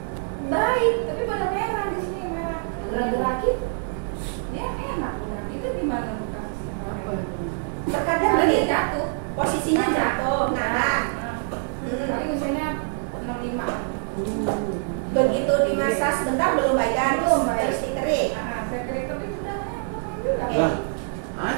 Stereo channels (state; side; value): silent; left; digital silence